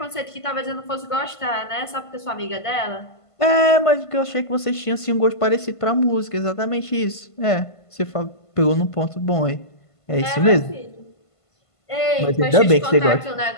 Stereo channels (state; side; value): late; right; 1.5 ms